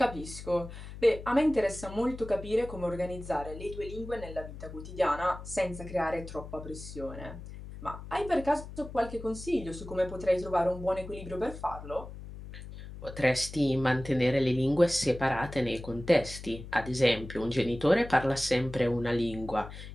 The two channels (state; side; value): noise; left; hum, 12 dB below the sound